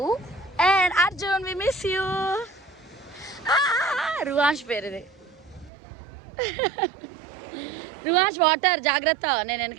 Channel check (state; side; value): drops out; left; at 5.7 s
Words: Arjun we miss you. Ruvansh పేరు ఇది. రువాంష్ వాటర్ జాగ్రత్త, నేను